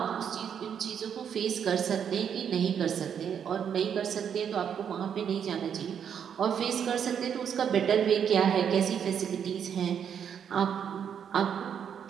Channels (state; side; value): quieter; left; 8.0 dB